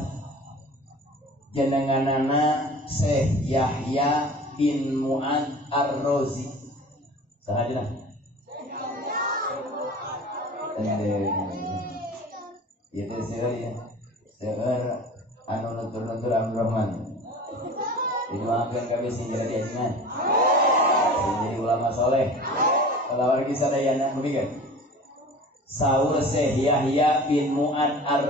jenenganana Syekh Yahya bin Mu'ad Ar-Razi. Sahajana. Itu sih anu nutur-nutur Abdurrahman. Didoakeun kabeh sing jadi ajengan. Jadi ulama soleh. Kalau lagi sadayana begini. Saur Syekh Yahya bin Mu'ad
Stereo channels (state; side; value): normal; both; correlation 0.40